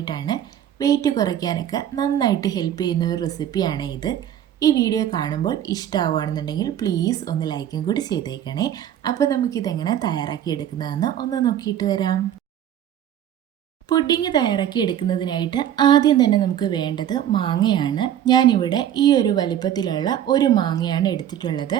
വെയിറ്റ് കുറയ്ക്കാനൊക്കെ നന്നായിട്ട് ഹെൽപ്പ് ചെയ്യുന്ന ഒരു റെസിപ്പിയാണ് ഇത്. ഈ വീഡിയോ കാണുമ്പോൾ ഇഷ്ടമാവുകയാണെന്നുണ്ടെങ്കിൽ പ്ലീസ് ഒന്ന് ലൈക്കും കൂടി ചെയ്തേക്കണേ. അപ്പോൾ നമുക്കിതെങ്ങനെ തയ്യാറാക്കി എടുക്കുന്നതെന്ന് ഒന്ന് നോക്കിയിട്ട് വരാം. പുഡിങ് തയ്യാറാക്കി എടുക്കുന്നതിനായിട്ട് ആദ്യം തന്നെ നമുക്ക് വേണ്ടത് മാങ്ങയാണ്. ഞാനിവിടെ ഈ ഒരു വലിപ്പത്തിലുള്ള ഒരു മാങ്ങയാണ് എടുത്തിട്ടുള്ളത്.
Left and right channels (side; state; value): left; quieter; 10.6 dB